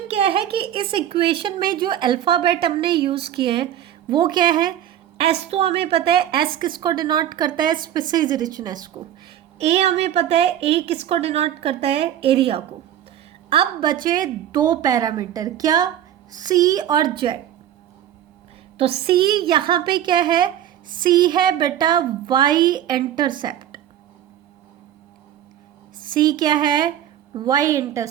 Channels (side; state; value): left; quieter; 11.2 dB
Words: क्या है कि इस इक्वेशन में जो अल्फ़ाबेट हमने यूज़ किए हैं वो क्या है, S तो हमें पता है, S किसको डिनोट करता है, स्पीसीज रिचनेस को। A हमें पता है, A किसको डिनोट करता है, एरिया को। अब बचे दो पैरामीटर, क्या, C और Z। तो C यहाँ पे क्या है, C है बेटा Y इंटरसेप्ट। C क्या है, Y